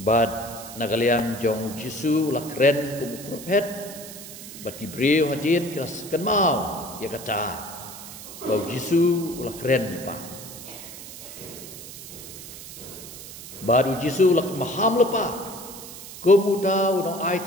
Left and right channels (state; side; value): noise; right; hiss, 13 dB below the sound